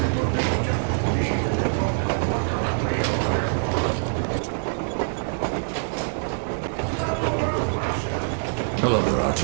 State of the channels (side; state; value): left; silent; digital silence